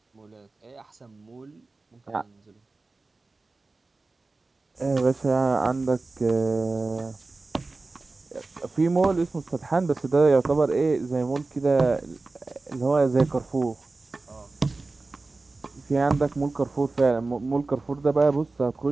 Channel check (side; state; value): left; quieter; 3.5 dB